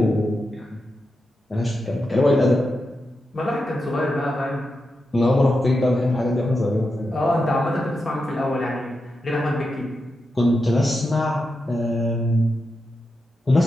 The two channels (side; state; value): both; normal; correlation 0.88